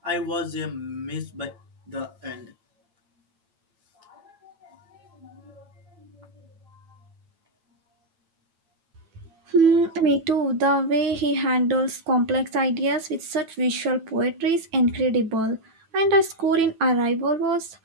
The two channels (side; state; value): left; late; 9.1 ms